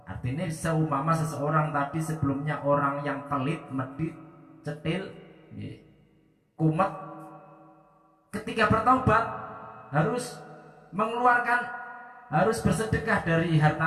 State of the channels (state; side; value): identical; both; correlation 1.00